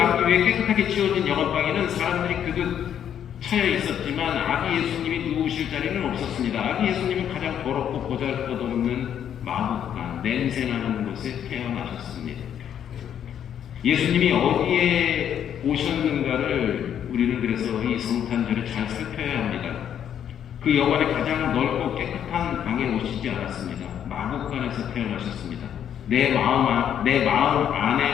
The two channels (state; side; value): quieter; right; 9.4 dB